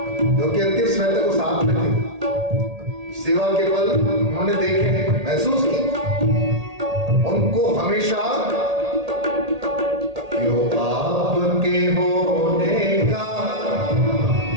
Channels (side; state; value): left; late; 1.8 ms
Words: जो कि अंतिम समय तक वो साथ में थे, सेवा के पल उन्होंने देखे, महसूस की, उनको हमेशा क्यों आपके होने का